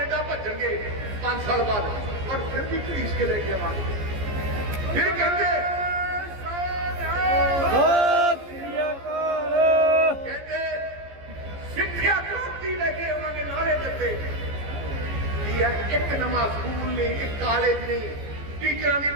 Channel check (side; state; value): left; late; 14 ms